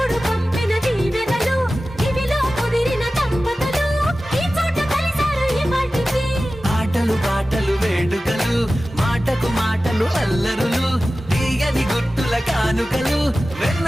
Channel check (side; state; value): both; normal; correlation 0.95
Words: పంపిన దీవెనలు ఇవిలో కుదిరిన దంపతులు ఈ చోట కలిసారు ఈ పాటికి ఆటలు పాటలు వేడుకలు మాటకు మాటలు అల్లరులు తీయని గుర్తుల కానుకలు